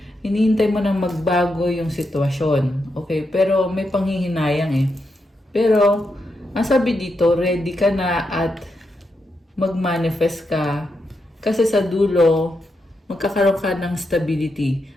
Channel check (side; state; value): both; normal; correlation 0.84